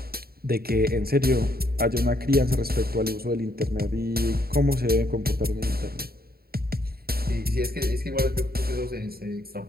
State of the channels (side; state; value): left; late; 0.45 ms